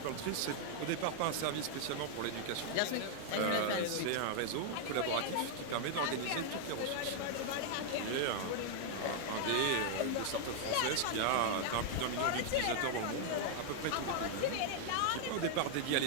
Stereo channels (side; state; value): both; different; correlation 0.00